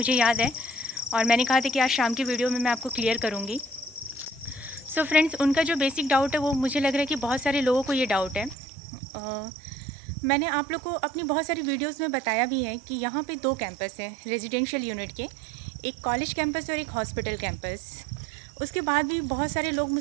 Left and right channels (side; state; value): left; drops out; at 8.6 s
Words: याद है और मैंने कहा था कि आज शाम की वीडियो में मैं आपको क्लियर करूँगी। सो फ्रेंड्स, उनका जो बेसिक डाउट है वो मुझे लग रहा है कि बहुत सारे लोगों को ये डाउट है। मैंने आप लोग को अपनी बहुत सारी वीडियोज़ में बताया भी है कि यहाँ पे दो कैंपस हैं रेजिडेंशियल यूनिट के, एक कॉलेज कैंपस और एक हॉस्पिटल कैंपस। उसके बाद भी बहुत सारे लोग